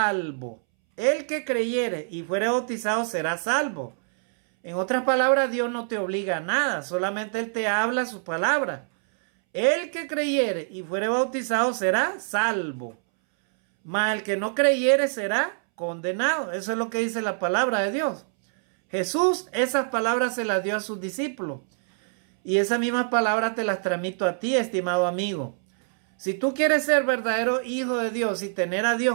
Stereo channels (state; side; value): silent; left; 62 dB below the other